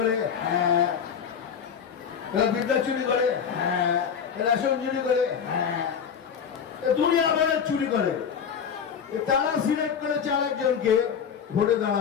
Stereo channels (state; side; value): quieter; right; 7.3 dB